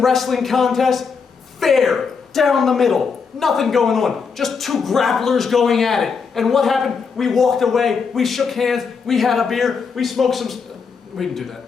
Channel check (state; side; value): quieter; right; 5.6 dB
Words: wrestling contest. Fair. Down the middle. Nothing going on. Just two grapplers going at it. And what happened? We walked away. We shook hands. We had a beer. We smoked some... We didn't do